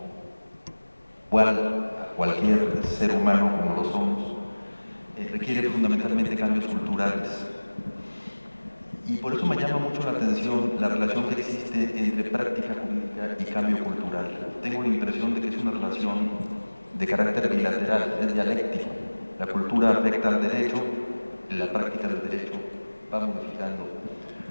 igual a cualquier ser humano como lo somos, requiere fundamentalmente cambios culturales. Y por eso me llama mucho la atención la relación que existe entre práctica jurídica y cambio cultural. Tengo la impresión de que es una relación de carácter bilateral, es dialéctico. La cultura afecta al derecho, la práctica del derecho va modificando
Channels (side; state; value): both; inverted; correlation -1.00